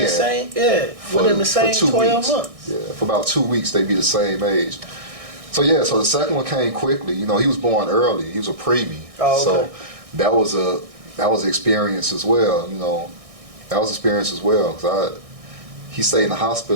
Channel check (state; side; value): late; left; 1.6 ms